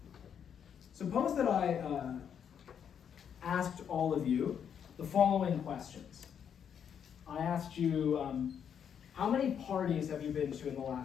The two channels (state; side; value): quieter; right; 8.1 dB